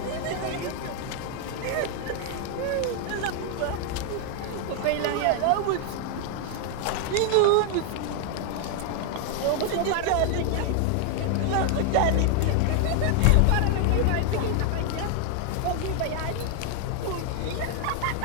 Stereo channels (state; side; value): different; both; correlation 0.00